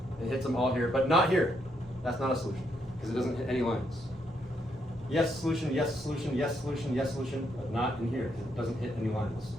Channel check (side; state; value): both; normal; correlation 0.76